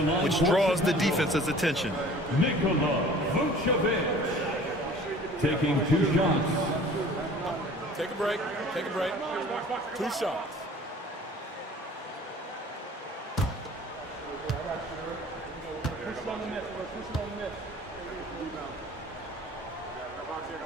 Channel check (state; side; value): normal; both; correlation 0.47